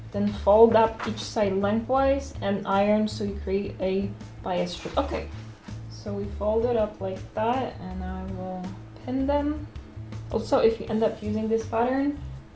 then fold up each side lengthwise and iron so you create a bias strip. Okay, so we fold it up like that, and I will pin them. Also, if you end up using this pattern,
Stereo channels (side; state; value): both; identical; correlation 1.00